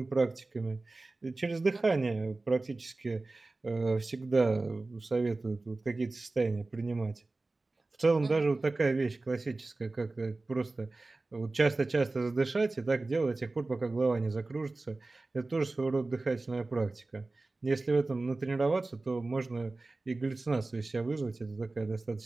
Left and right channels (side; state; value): left; quieter; 3.3 dB